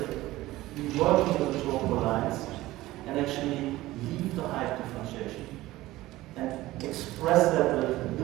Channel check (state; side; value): quieter; left; 17.3 dB